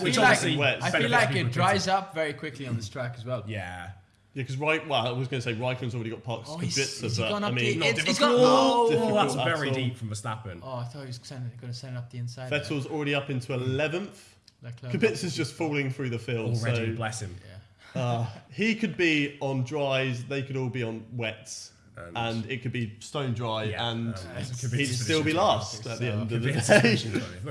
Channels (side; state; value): both; identical; correlation 1.00